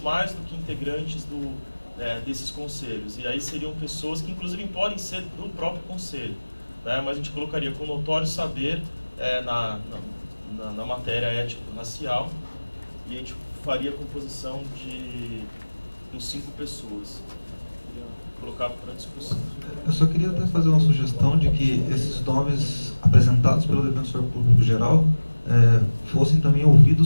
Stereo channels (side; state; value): both; inverted; correlation -1.00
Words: do que integrantes desses conselhos. E aí seriam pessoas que inclusive podem ser do próprio conselho, né? Mas a gente colocaria com notório saber na matéria étnico-racial, e a gente faria a composição com 5 pessoas. Queria colocar para discussão. Eu só queria até fazer uma sugestão de que esses nomes apresentados pelo defensor público geral fossem também